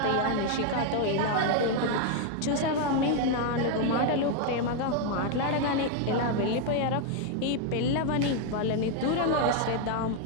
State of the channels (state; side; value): different; both; correlation 0.00